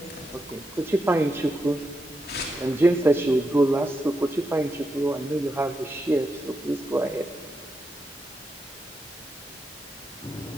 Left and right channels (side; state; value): both; normal; correlation 0.85